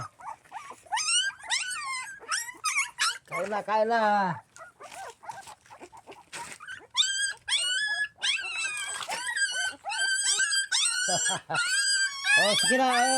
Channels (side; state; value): both; identical; correlation 1.00